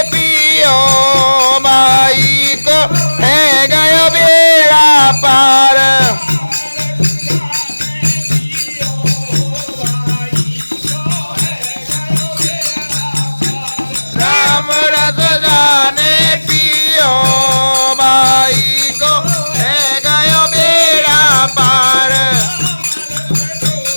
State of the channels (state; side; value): inverted; both; correlation -1.00